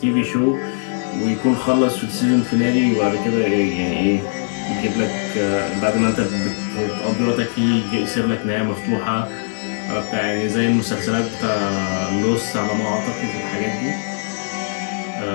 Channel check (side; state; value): right; silent; 64 dB below the other